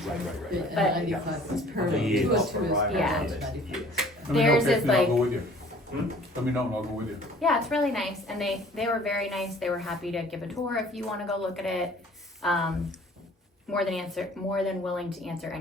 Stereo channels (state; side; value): normal; both; correlation 0.52